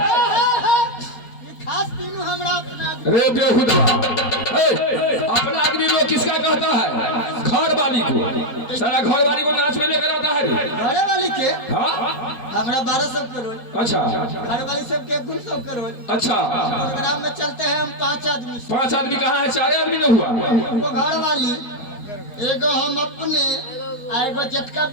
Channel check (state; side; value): late; right; 4.3 ms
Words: खास तीनों हमरा अपना रे बेहुदा अपना आदमी लोग किसका कहता है? घर वाली को। सारा घर वाली को नाच में लेकर आता है। घरे वाली के हाँ हमरा 1200 करोड़। अच्छा घर वाली सबके 100 करोड़। अच्छा प्रोग्राम में चलते हैं हम 5 आदमी। 5 आदमी कहाँ है? 4 आदमी न हुआ। वो घर वाली एगो हम अपने आ एगो जटका